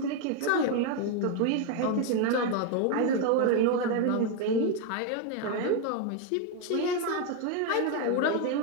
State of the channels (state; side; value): different; both; correlation 0.01